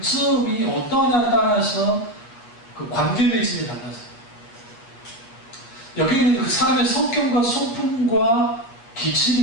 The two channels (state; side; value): late; right; 8.3 ms